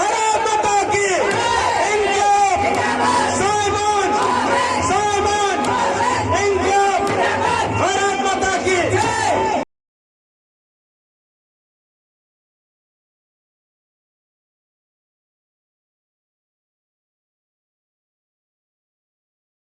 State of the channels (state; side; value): identical; both; correlation 1.00